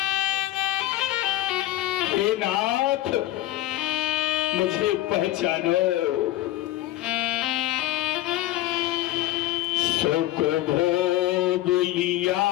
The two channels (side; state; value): right; quieter; 15.6 dB